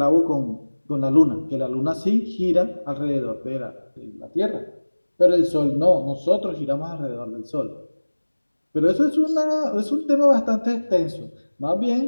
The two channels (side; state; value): both; inverted; correlation -1.00